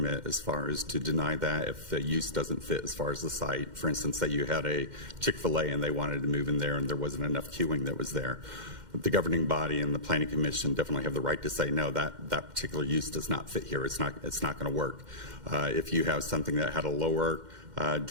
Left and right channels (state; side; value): late; left; 2.1 ms